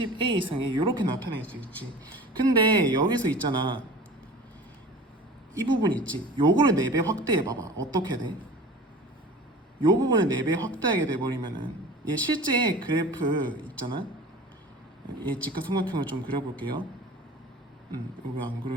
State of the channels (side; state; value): both; normal; correlation 0.39